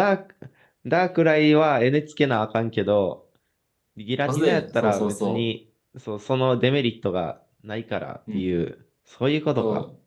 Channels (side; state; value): both; identical; correlation 1.00